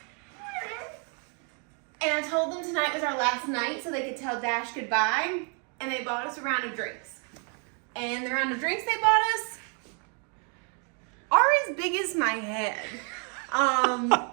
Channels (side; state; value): left; quieter; 38.7 dB